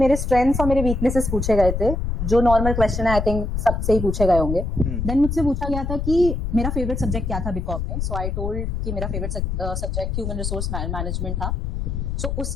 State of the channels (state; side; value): noise; left; rumble, 2 dB below the sound